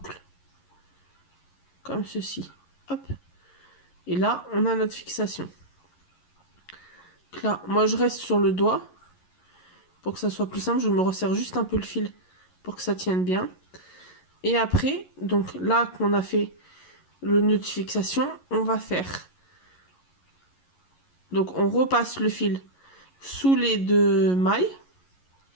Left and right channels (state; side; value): late; right; 11 ms